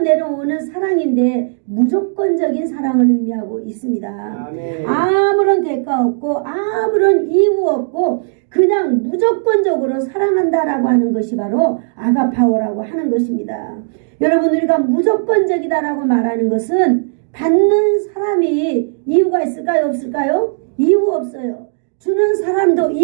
사랑인데 무조건적인 사랑을 의미하고 있습니다. 아멘. 아무런 대가 없고 아무런 이유 없고 그냥 무조건적으로 사랑한다라고 하는 것이 바로 아가파오라고 하는 것입니다. 여러분, 우리가 무조건적이다라고 말하는 것은 받는 사람이 이유가 있을까요? 없을까요? 이유 없어요. 주는 사람도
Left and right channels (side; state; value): left; silent; digital silence